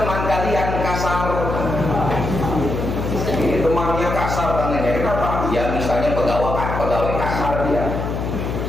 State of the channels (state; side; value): noise; left; hum, 3 dB below the sound